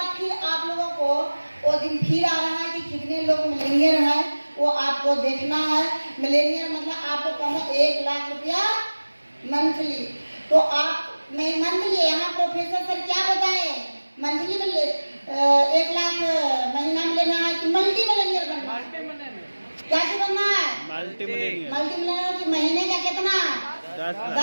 फिर आप लोगों को वो दिन फिर आ रहा है कि कितने लोग मिलेनियर हैं, वो आपको देखना है। मिलेनियर मतलब आपको कम 1 लाख रुपया मंथली। तो आप मैं मंथली, यहाँ प्रोफेसर सर क्या बताए, मंथली में 1 लाख महीना में लेना है कि मल्टी मिलेनियर बनना है? क्या बनना है? Multi Millionaire. की महीने का कितना?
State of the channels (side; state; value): both; inverted; correlation -1.00